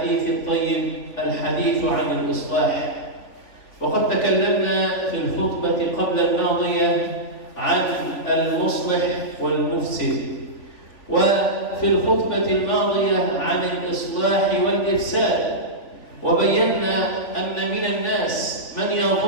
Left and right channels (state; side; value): late; right; 3.5 ms